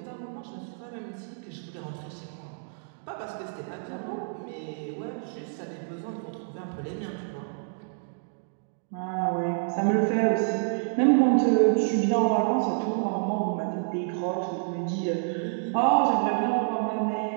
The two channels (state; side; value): silent; left; digital silence